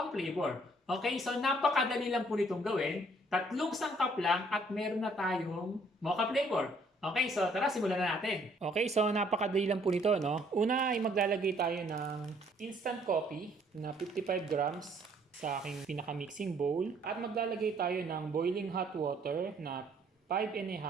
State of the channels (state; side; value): normal; both; correlation 0.63